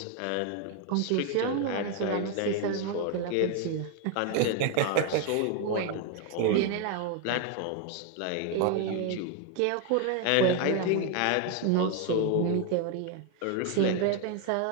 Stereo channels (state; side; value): different; both; correlation 0.01